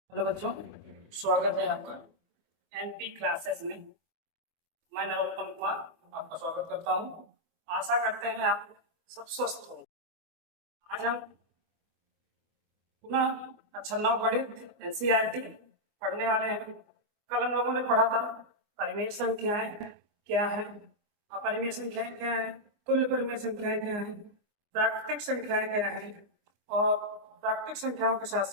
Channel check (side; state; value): left; late; 24 ms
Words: Hello बच्चों, स्वागत है आपका एनपी क्लासेस में। मैं नरोत्तम कुमार आपका स्वागत करता हूं। आशा करते हैं आप सब स्वस्थ हो। आज हम पुनः अक्षर 9 गणित एनसीईआरटी पढ़ने वाले हैं। कल हम लोगों ने पढ़ा था परिमेय संख्याएं क्या है, अपरिमेय संख्याएं क्या है, तुल्य परिमेय संख्याएं क्या है, प्राकृतिक संख्याएं क्या है और प्राकृतिक संख्याओं के